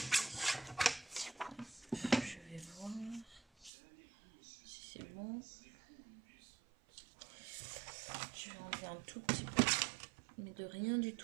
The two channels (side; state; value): left; drops out; at 3.7 s